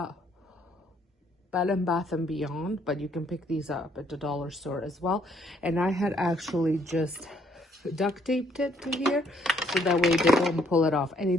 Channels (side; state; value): both; normal; correlation 0.67